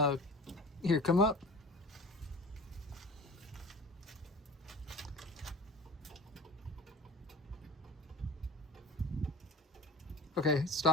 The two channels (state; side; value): normal; both; correlation 0.39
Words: here, come up. Okay,